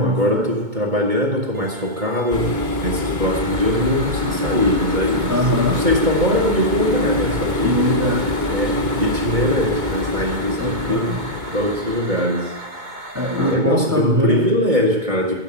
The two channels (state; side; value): late; left; 2.2 ms